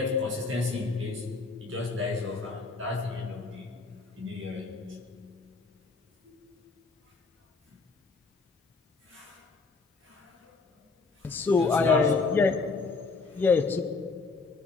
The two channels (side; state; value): right; quieter; 4.1 dB